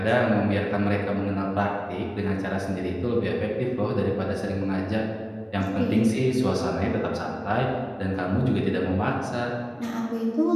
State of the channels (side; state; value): both; identical; correlation 1.00